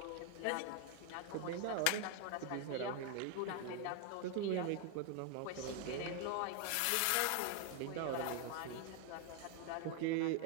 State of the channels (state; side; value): different; both; correlation 0.01